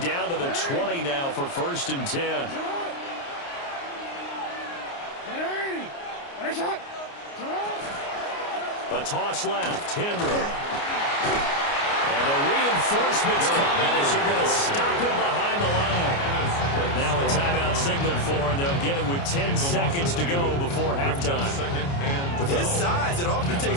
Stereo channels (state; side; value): late; right; 29 ms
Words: to the 20 now for first and 10. A toss left, Henry. And the reinforcements come in as they're going to stop him behind the line. Now a timeout signaled for, and they'll get it with 10 seconds to go before halftime. With his size, it often